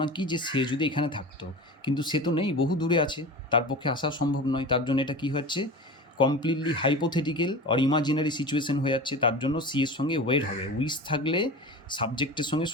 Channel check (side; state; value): both; normal; correlation 0.32